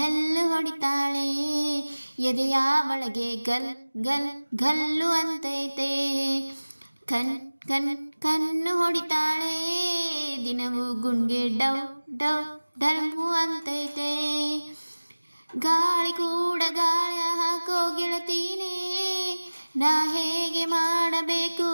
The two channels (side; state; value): both; inverted; correlation -1.00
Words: ಹೊಡಿತಾಳೆ, ಎದೆಯ ಒಳಗೆ ಗಲ್ ಗಲ್ ಗಲ್ಲು ಅಂತೈತೆ. ಕಣ್ ಕಣ್ ಕಣ್ಣು ಹೊಡಿತಾಳೆ, ದಿನವೂ ಗುಂಡ್ಗೆ ಡವ್ ಡವ್ ಡಲ್ಮು ಅಂತೈತೆ. ಗಾಳಿ ಕೂಡ ಗಾಳಿ ಹಾಕೋ ಗೆಳತೀನೇ, ನಾ ಹೇಗೆ ಮಾಡಬೇಕು